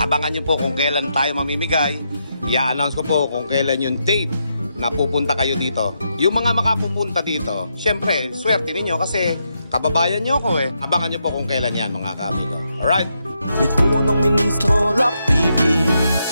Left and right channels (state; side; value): inverted; both; correlation -0.81